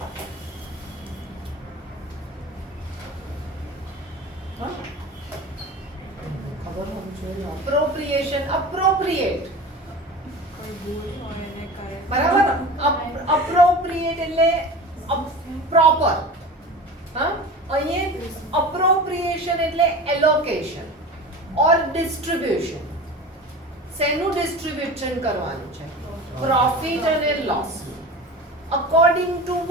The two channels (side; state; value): both; normal; correlation 0.34